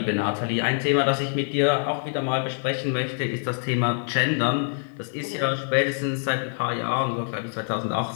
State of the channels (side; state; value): right; silent; digital silence